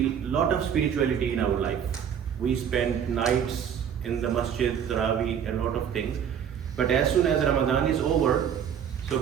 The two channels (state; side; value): quieter; left; 8.4 dB